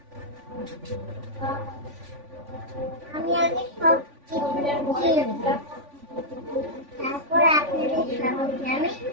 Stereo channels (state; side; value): late; left; 3.5 ms